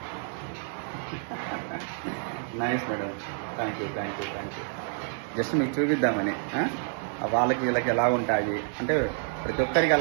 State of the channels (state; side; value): silent; left; 59 dB below the other